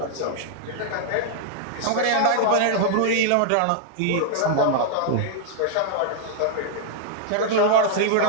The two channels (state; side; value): different; both; correlation -0.01